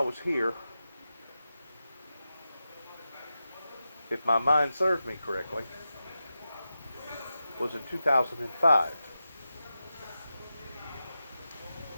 was here, if my mind serves me correctly, was in 2005.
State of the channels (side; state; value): both; inverted; correlation -0.91